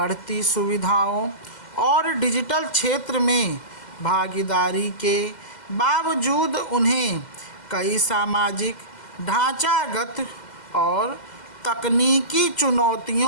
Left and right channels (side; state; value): right; late; 2.0 ms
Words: सुविधाओं और डिजिटल क्षेत्र में भागीदारी के बावजूद उन्हें कई सामाजिक ढांचागत और तकनीकी